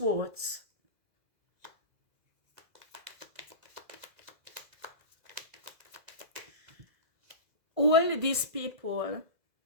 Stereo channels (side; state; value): left; late; 2.0 ms